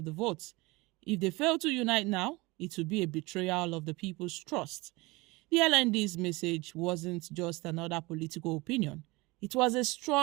the votes. If they fail to unite now, it would be a betrayal of the people's trust. The LND's message wasn't just another political opinion. It was a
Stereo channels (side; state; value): left; quieter; 23.2 dB